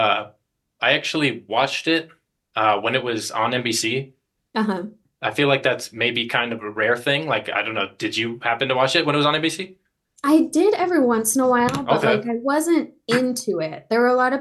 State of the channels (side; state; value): both; identical; correlation 1.00